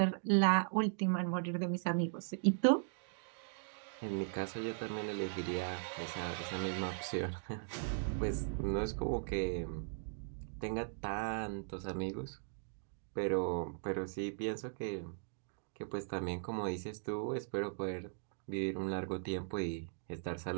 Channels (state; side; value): silent; left; digital silence